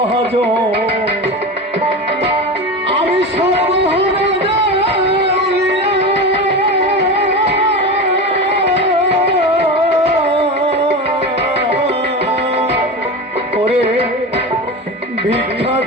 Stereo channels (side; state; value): both; normal; correlation 0.25